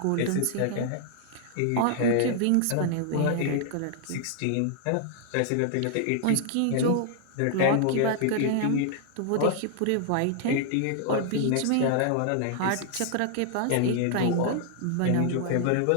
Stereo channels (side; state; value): both; different; correlation 0.00